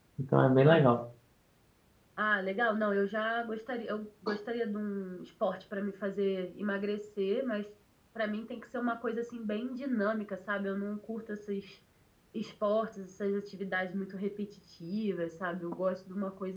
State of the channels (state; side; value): identical; both; correlation 1.00